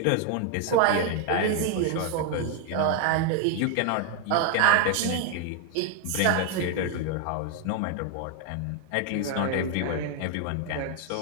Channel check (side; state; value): both; different; correlation 0.01